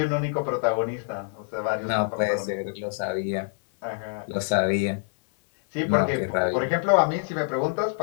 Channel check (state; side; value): silent; right; 58 dB below the other